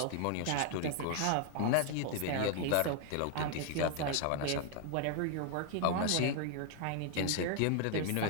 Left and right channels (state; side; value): different; both; correlation 0.00